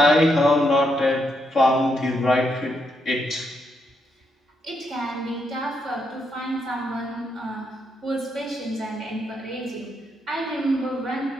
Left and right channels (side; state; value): both; normal; correlation 0.78